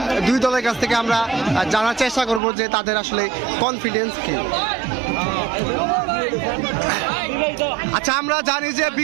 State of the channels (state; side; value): drops out; left; at 2.4 s